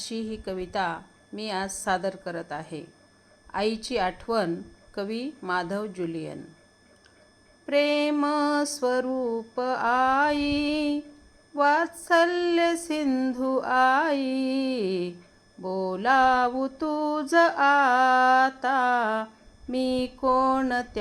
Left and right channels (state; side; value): identical; both; correlation 1.00